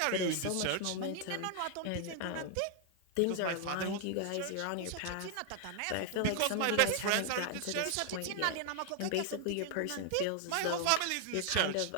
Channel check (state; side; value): different; both; correlation 0.00